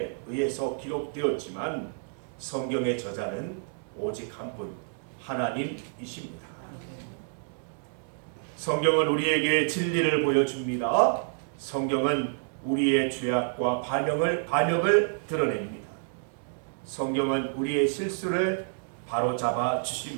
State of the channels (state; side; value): silent; left; digital silence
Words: 의해서 기록되었지만 성경의 저자는 오직 한 분, 하나님이십니다. 성경은 우리에게 진리를 보여줍니다. 성경은 우리의 죄악과 반역을 드러냅니다. 성경은 우리의 실수를 바로잡아